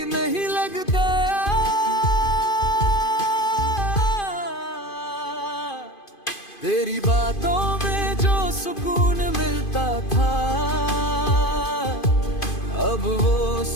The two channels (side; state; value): right; late; 2.5 ms